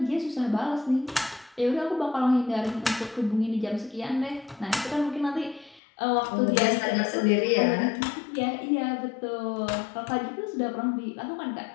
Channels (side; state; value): right; drops out; at 5.8 s